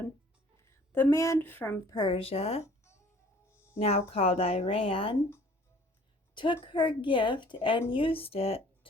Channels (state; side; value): normal; both; correlation 0.54